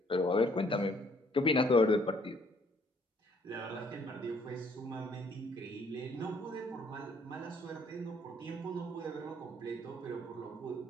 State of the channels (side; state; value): both; normal; correlation 0.64